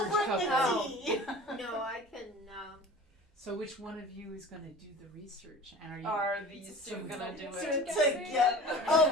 bring the couple. tea. No, I can, So which one of you is gonna do the research? And are you Are these two gonna do it To get. Oh,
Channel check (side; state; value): both; normal; correlation 0.40